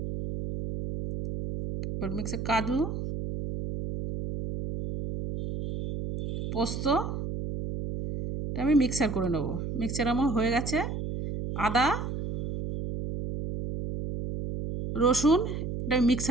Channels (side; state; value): right; noise; hum, 5 dB below the sound